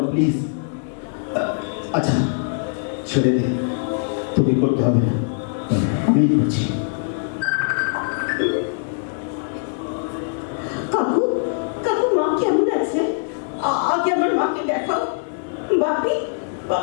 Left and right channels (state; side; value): silent; right; digital silence